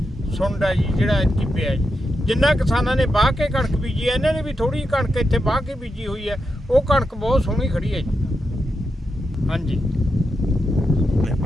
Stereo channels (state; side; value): normal; both; correlation 0.86